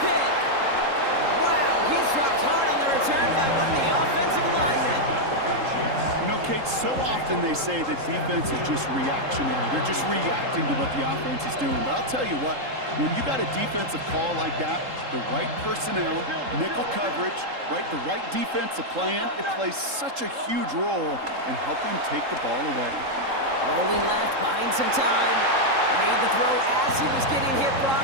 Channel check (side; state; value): left; late; 3.7 ms